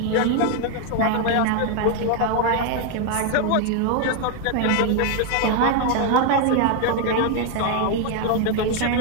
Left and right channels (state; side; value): different; both; correlation 0.01